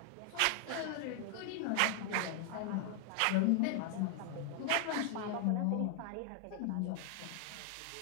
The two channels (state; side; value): different; both; correlation 0.00